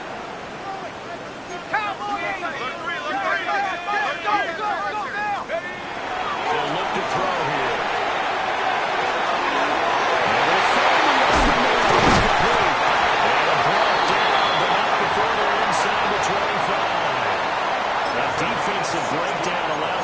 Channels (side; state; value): both; identical; correlation 1.00